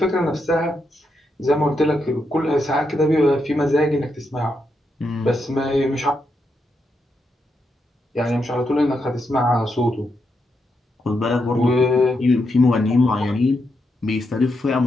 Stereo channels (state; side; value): normal; both; correlation 0.82